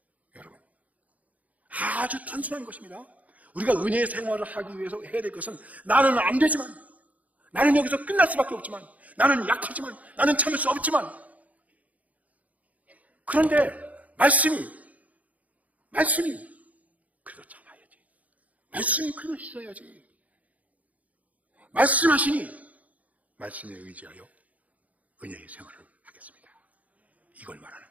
여러분 아주 단순한 것입니다. 우리가 은혜의 생활을 하기 위해서 해야 될 것은 나는 안 되지만 나는 여기서 끝날 수밖에 없지만 나는 약하지만 나는 참을 수 없지만 그런데 말씀이 그래도 참아야지. 말씀이 그래도 있어야지. 말씀하시니 말씀에 의지하여 은혜의 생활을 하겠습니다. 이걸 말하는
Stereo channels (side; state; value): left; late; 0.072 ms